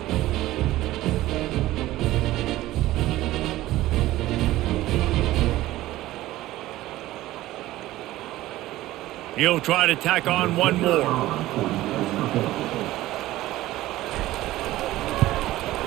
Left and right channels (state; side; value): quieter; left; 16.2 dB